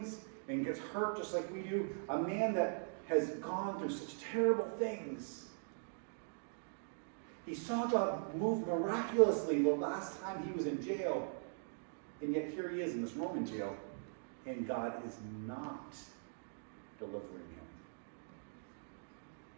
and gets hurt just like we do, a man that has gone through such terrible things. He saw God move miraculously the last time he was in jail, and yet here he is in this Roman jail, and God is not delivering him.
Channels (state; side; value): silent; left; digital silence